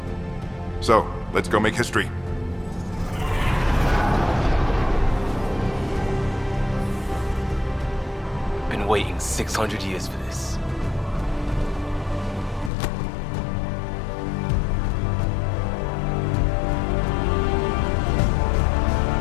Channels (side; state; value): right; drops out; at 12.7 s